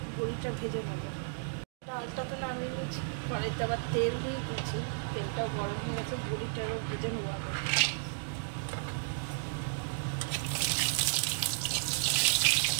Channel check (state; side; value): silent; left; digital silence